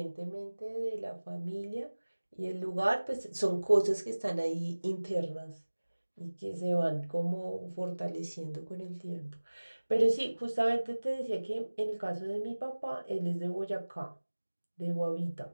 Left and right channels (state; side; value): inverted; both; correlation -1.00